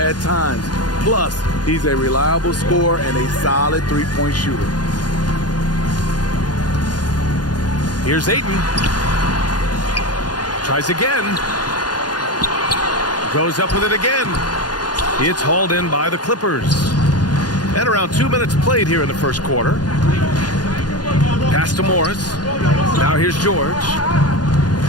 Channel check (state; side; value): late; right; 0.69 ms